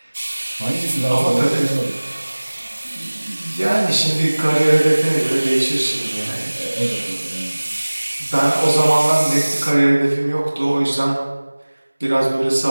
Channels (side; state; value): both; inverted; correlation -1.00